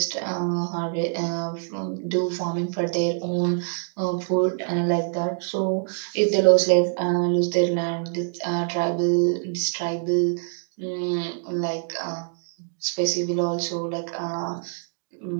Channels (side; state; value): left; silent; digital silence